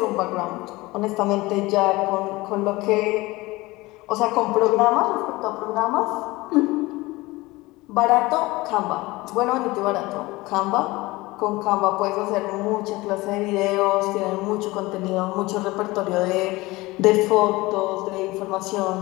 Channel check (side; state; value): right; quieter; 20.9 dB